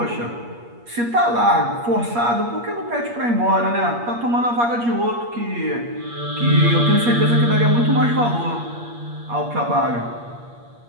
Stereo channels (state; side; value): late; left; 8.5 ms